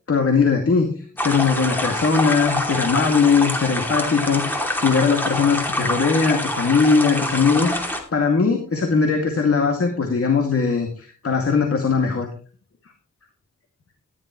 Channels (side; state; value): right; quieter; 4.2 dB